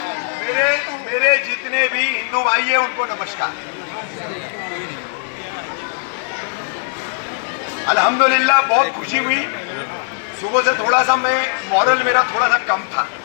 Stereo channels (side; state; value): right; silent; digital silence